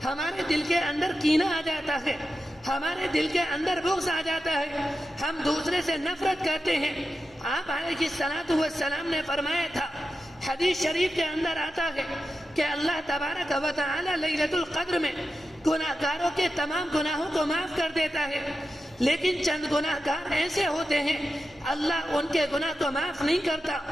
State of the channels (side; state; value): left; noise; hum, 29 dB below the sound